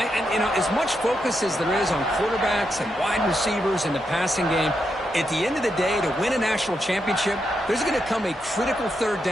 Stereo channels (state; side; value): normal; both; correlation 0.83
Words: And as much focus as there is on quarterbacks and wide receivers in the passing game, at the end of the day, to win a national championship, there's going to come a critical 3rd